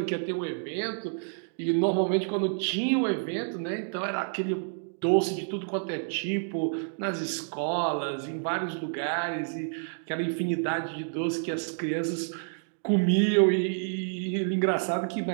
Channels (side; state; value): left; silent; digital silence